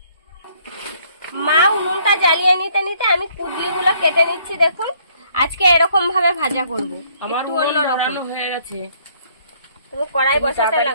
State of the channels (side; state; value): both; inverted; correlation -0.64